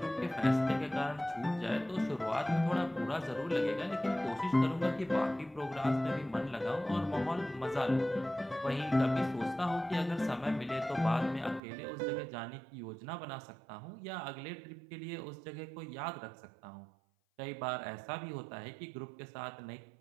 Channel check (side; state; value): left; drops out; at 11.6 s